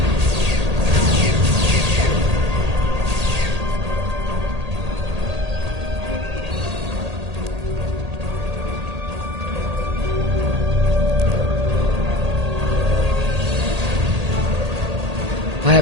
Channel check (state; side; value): late; left; 1.8 ms